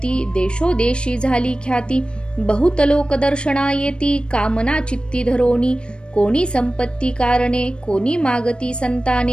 देशोदेशी झाली ख्याती. बहुत लोक दर्शना येती, कामना चित्ती धरोनी. कोणी संपत्ती कारणे, कोणी मागती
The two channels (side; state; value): right; late; 0.055 ms